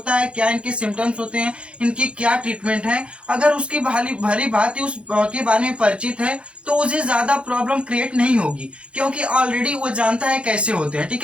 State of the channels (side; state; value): left; late; 0.059 ms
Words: है, क्या इनके सिम्टम्स होते हैं, इनकी क्या ट्रीटमेंट है, अगर उसकी भली भांति उस के बारे में परिचित है, तो उसे ज्यादा प्रॉब्लम क्रिएट नहीं होगी, क्योंकि ऑलरेडी वो जानता है कैसे होते हैं। ठीक